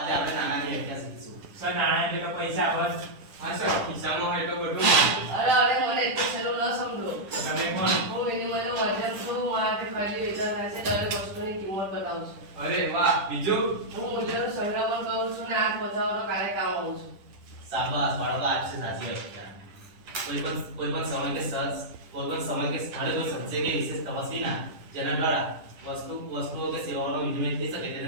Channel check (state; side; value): late; left; 10 ms